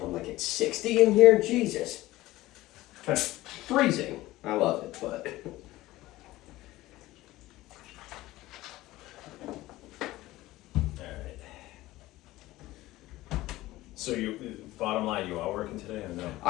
I'm like, it's 60 in here? Jesus. Freezing. I love it, but... Alright. So bottom line, you are working today or no?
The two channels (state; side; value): quieter; right; 17.4 dB